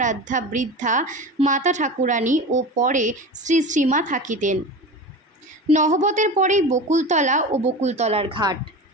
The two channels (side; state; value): both; normal; correlation 0.30